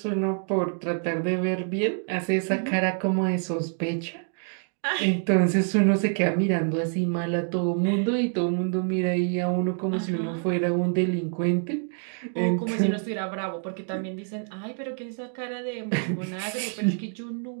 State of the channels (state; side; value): silent; left; 60 dB below the other